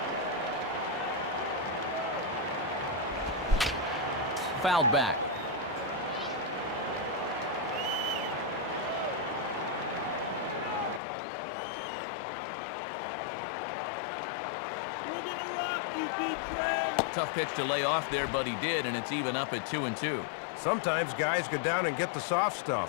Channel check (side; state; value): right; drops out; at 11.0 s